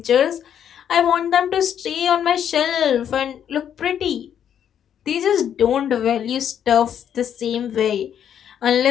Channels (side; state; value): right; quieter; 9.2 dB